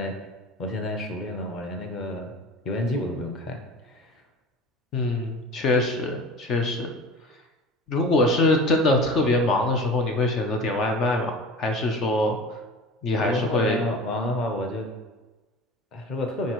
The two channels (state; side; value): normal; both; correlation 0.37